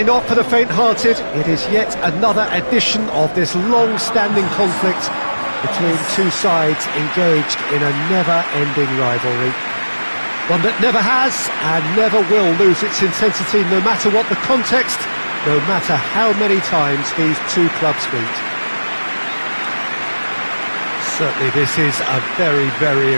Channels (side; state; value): both; inverted; correlation -1.00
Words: not for the faint-hearted. It is yet another edition of this long-standing conflict between two sides engaged in a never-ending rivalry. One that never has and never will lose its intensity, no matter what the context, no matter how many times these two clubs meet. Certainly this is a very, very